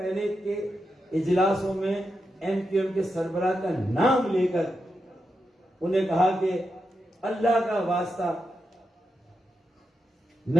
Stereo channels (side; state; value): both; normal; correlation 0.87